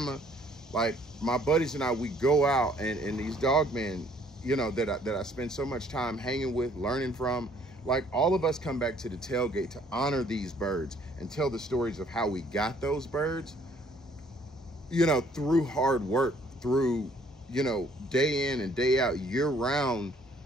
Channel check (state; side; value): normal; both; correlation 0.61